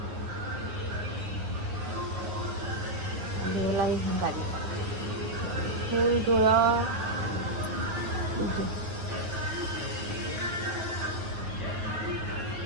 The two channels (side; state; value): left; late; 9.6 ms